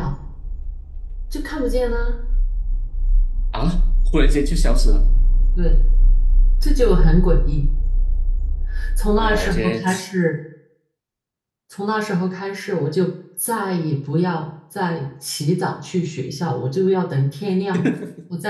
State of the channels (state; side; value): identical; both; correlation 1.00